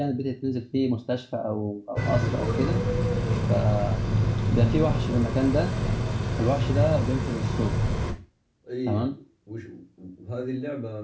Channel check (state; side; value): identical; both; correlation 1.00